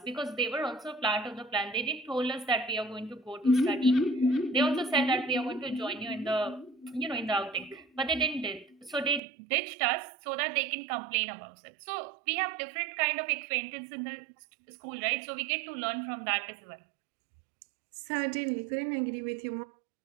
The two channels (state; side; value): drops out; left; at 9.2 s